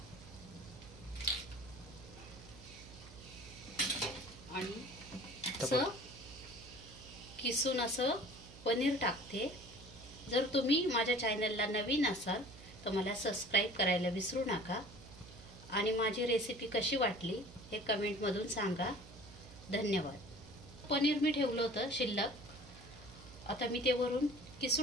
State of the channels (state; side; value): noise; right; hum, 18 dB below the sound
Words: आणि असं किसून असं पनीर टाकते. जर तुम्ही माझ्या चॅनलला नवीन असाल तर मला सबस्क्राईब करायला विसरू नका आणि माझी रेसिपी कशी वाटली हे कमेंटमधून सांगा. धन्यवाद. पनीर मी ठेवलं होतं शिल्लक, आता मी ते वरून